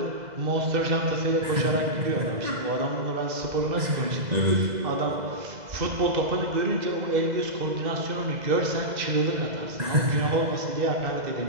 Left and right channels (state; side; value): late; left; 2.0 ms